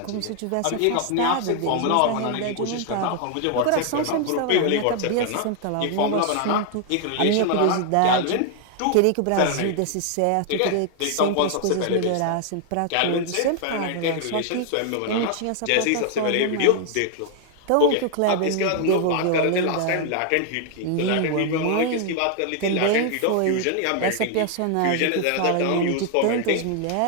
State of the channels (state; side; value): different; both; correlation 0.00